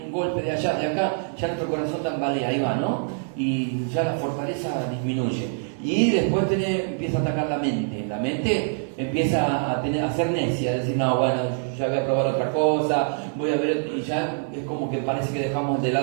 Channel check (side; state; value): left; silent; 56 dB below the other